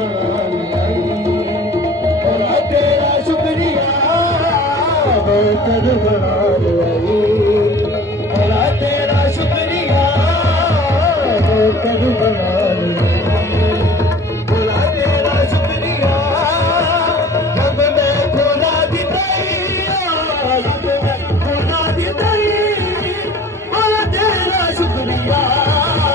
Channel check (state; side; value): normal; both; correlation 0.46